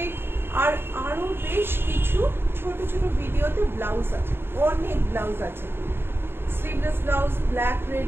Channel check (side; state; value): left; late; 0.11 ms